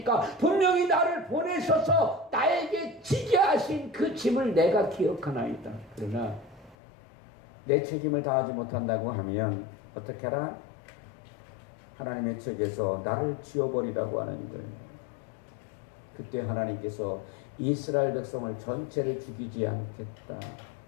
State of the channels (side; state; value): right; drops out; at 6.8 s